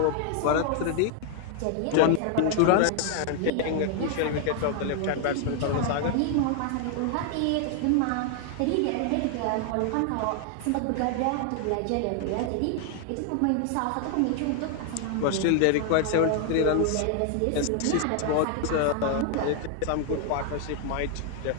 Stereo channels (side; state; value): both; different; correlation 0.00